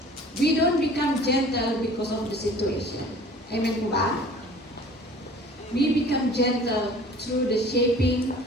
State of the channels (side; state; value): both; normal; correlation 0.47